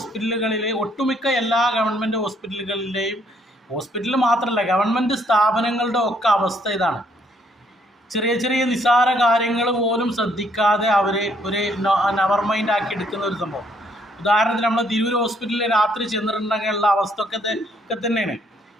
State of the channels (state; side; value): normal; both; correlation 0.68